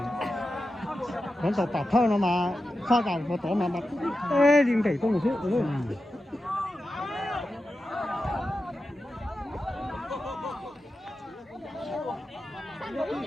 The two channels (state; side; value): normal; both; correlation 0.91